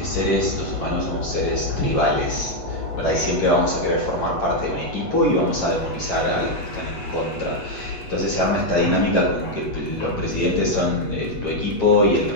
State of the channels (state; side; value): late; right; 8.2 ms